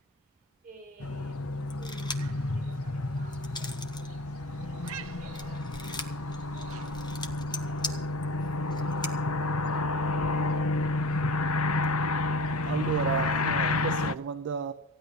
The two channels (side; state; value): both; normal; correlation 0.37